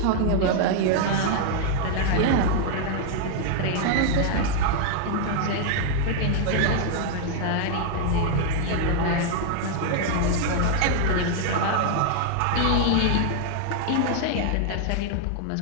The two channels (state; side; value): different; both; correlation 0.00